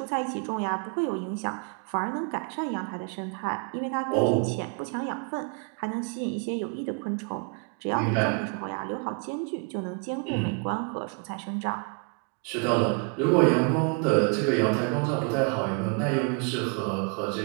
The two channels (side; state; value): left; quieter; 36.1 dB